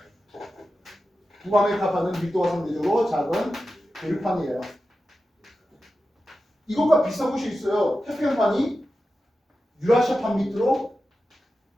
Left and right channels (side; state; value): both; normal; correlation 0.92